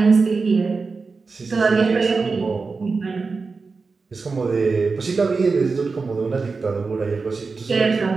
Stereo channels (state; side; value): quieter; left; 4.4 dB